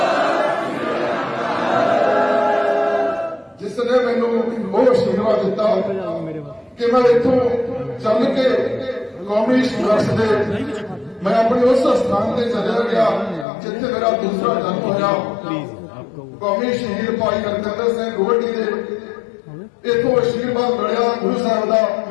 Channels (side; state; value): right; drops out; at 13.5 s